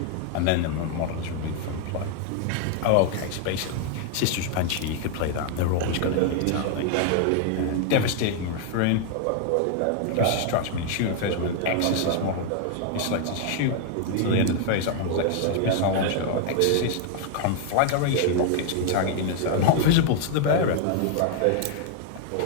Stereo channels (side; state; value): both; different; correlation 0.00